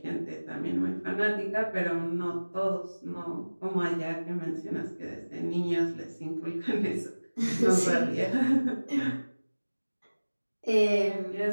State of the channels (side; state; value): both; inverted; correlation -1.00